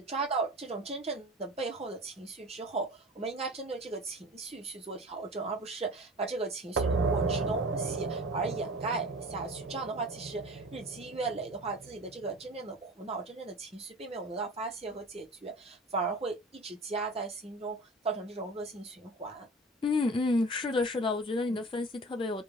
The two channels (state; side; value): normal; both; correlation 0.37